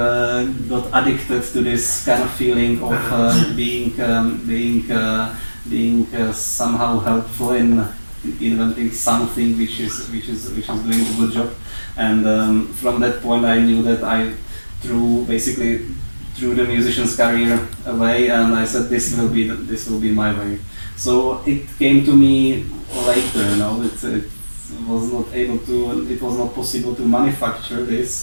addicted to this kind of feeling of being somehow helpful in inventing something which is doing a good job. And from that point, I knew that I threw the musician's career away, and I said this will be my way. So it came to me later. It was not possible to manufacture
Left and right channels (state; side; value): inverted; both; correlation -1.00